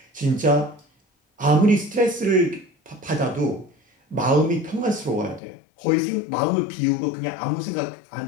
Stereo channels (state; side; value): drops out; right; at 5.4 s